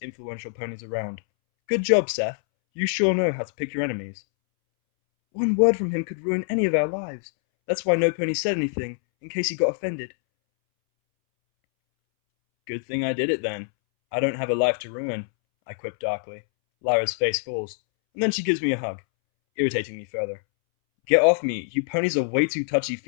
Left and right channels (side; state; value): right; silent; 62 dB below the other